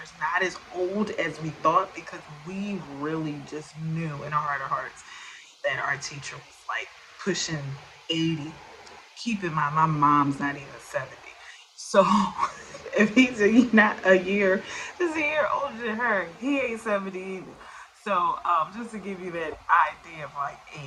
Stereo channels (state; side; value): identical; both; correlation 1.00